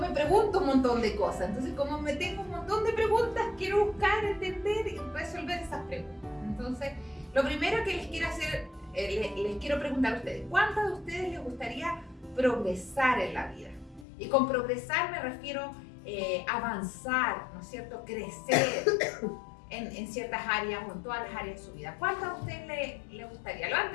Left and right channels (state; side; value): drops out; right; at 14.1 s